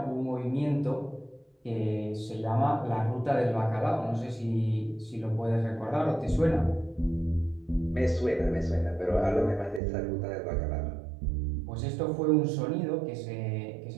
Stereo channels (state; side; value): drops out; left; at 9.8 s